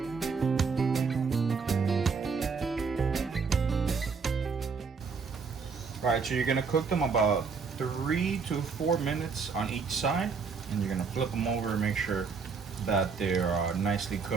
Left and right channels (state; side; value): quieter; left; 5.3 dB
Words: All right, so you're gonna cook them about 3 to 4 minutes on each side, and you're gonna flip them over and make sure that they're nicely